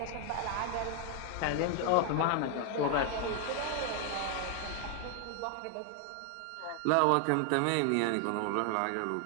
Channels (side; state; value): both; different; correlation 0.00